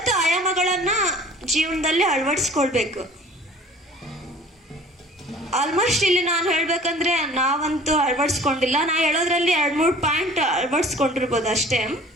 ಆಯಾಮಗಳನ್ನ ಜೀವನದಲ್ಲಿ ಅಳವಡಿಸ್ಕೊಳ್ಬೇಕು. ಆಲ್ಮೋಸ್ಟ್ ಇಲ್ಲಿ ನಾನು ಹೇಳ್ಬೇಕಂದ್ರೆ ನಾವಂತೂ ಅಳವಡಿಸ್ಕೊಂಡಿಲ್ಲ. ನಾ ಹೇಳೋದ್ರಲ್ಲಿ 2-3 ಪಾಯಿಂಟ್ ಅಳವಡಿಸ್ಕೊಂಡಿರ್ಬೋದು ಅಷ್ಟೇ.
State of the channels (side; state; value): both; normal; correlation 0.48